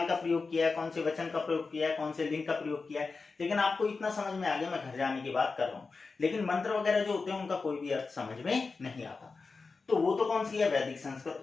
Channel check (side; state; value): right; quieter; 4.3 dB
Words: का प्रयोग किया है, कौन से वचन का प्रयोग किया है, कौन से लिंग का प्रयोग किया है, लेकिन आपको इतना समझ में आ गया मैं घर जाने की बात कर रहा हूँ, लेकिन मंत्र वगैरह जो होते हैं उनका कोई भी अर्थ समझ में नहीं आता, तो वो तो कौन सी है, वैदिक